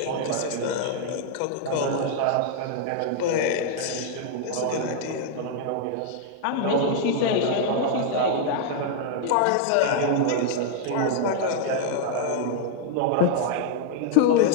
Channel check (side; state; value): both; different; correlation -0.01